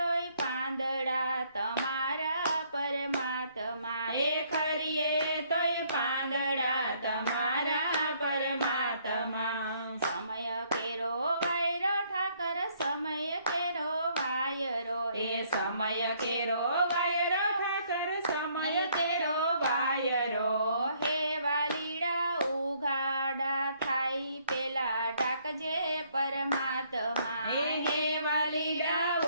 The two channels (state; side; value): inverted; both; correlation -0.66